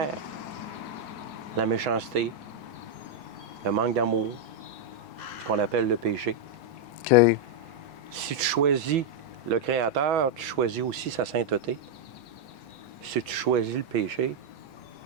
la méchanceté, le manque d'amour, ce qu'on appelle le péché. OK. Si tu choisis le Créateur, tu choisis aussi sa sainteté. Si tu choisis le péché,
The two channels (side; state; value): both; normal; correlation -0.01